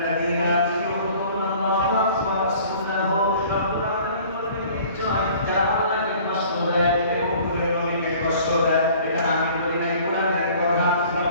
ইউযুল্লাহ ওয়া রাসূলাহু, রব্বুল আলামিন বলেন নিশ্চয় যারা আল্লাহকে কষ্ট দেয় এবং নবীকে কষ্ট দেয়, এটা আমি বলি না, কোরআনের কথা।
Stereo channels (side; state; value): both; inverted; correlation -0.50